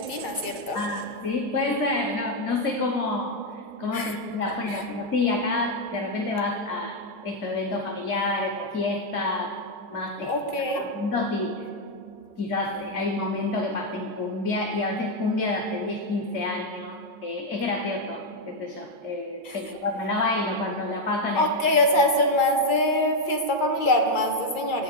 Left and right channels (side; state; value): right; late; 2.3 ms